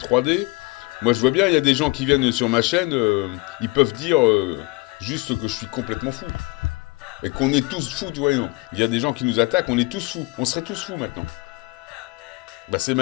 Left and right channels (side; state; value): right; quieter; 24.9 dB